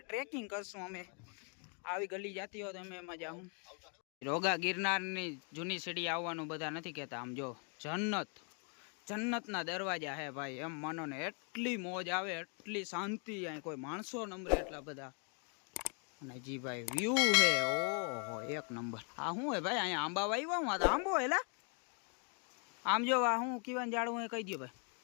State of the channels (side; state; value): right; quieter; 39.7 dB